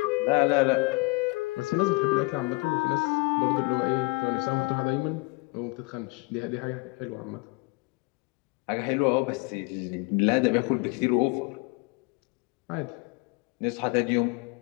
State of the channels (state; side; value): quieter; right; 27.7 dB